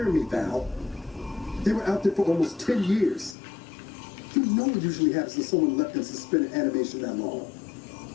me, Val. They were out there for almost 10 years. You know what usually happens when someone left in suspended animation that long.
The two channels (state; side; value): drops out; right; at 3.4 s